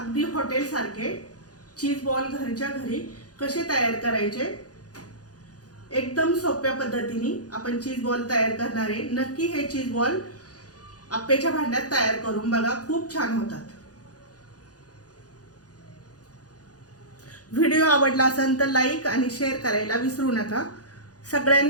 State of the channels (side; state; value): right; late; 0.68 ms